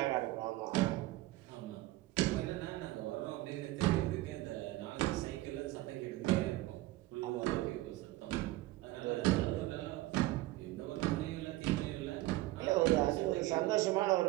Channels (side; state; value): left; quieter; 17.9 dB